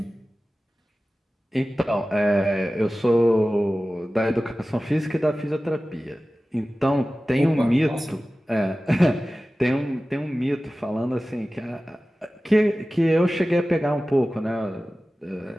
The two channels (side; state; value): both; normal; correlation 0.96